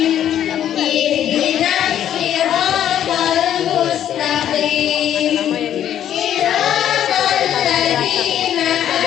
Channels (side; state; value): right; quieter; 10.6 dB